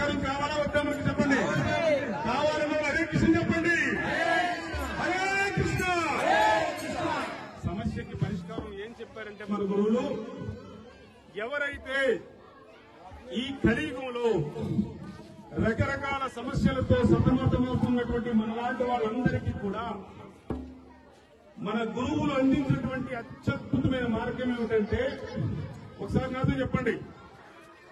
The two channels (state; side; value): identical; both; correlation 1.00